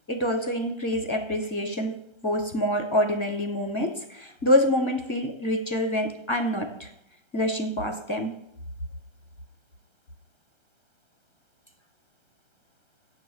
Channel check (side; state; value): right; late; 1.3 ms